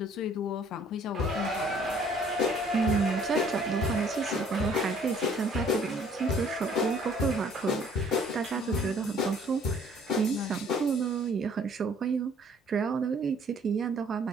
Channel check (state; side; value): normal; both; correlation 0.59